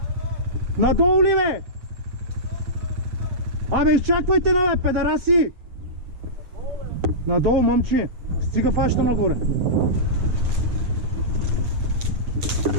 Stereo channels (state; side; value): late; left; 8.6 ms